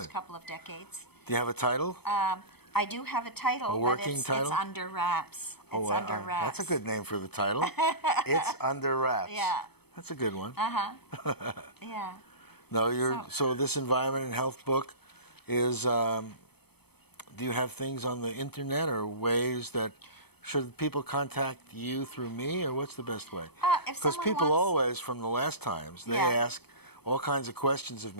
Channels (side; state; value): right; late; 0.97 ms